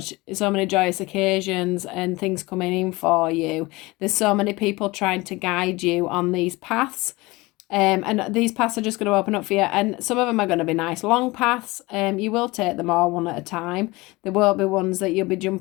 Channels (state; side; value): quieter; right; 22.1 dB